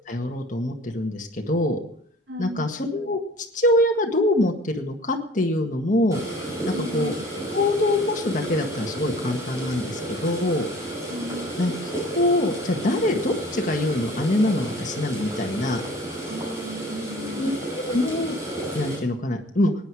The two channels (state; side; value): normal; both; correlation 0.48